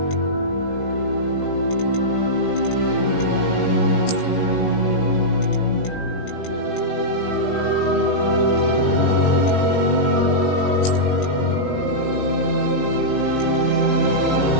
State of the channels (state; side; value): late; right; 18 ms